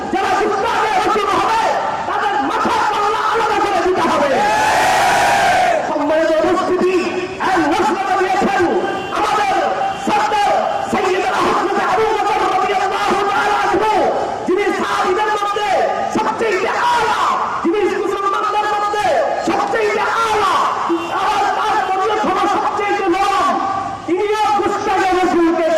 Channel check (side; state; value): both; identical; correlation 1.00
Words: যারা গুস্তাখে রাসূল হবে তাদের মাথা কল্লা আলাদা করে দিতে হবে। সম্মানিত উপস্থিতি, এক ঘোষণা দিয়েছেন আমাদের সরদার সাইয়্যিদুনা হযরত আবু বকর রাদিয়াল্লাহু তাআলা আনহু, যিনি সাহাবীদের মধ্যে সবচেয়ে আলা, যিনি মুসলমানদের মধ্যে সবচেয়ে আলা, সবচেয়ে নরম, তিনিও গুস্তাখে রাসূলকে